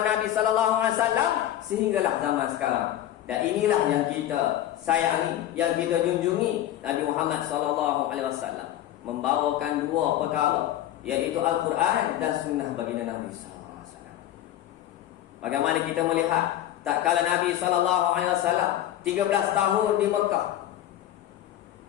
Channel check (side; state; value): right; quieter; 12.6 dB